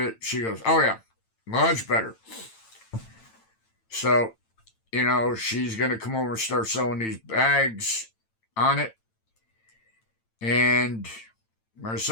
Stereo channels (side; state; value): right; late; 8.9 ms